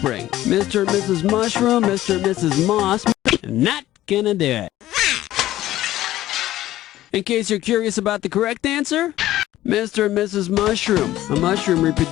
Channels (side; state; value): right; quieter; 14.5 dB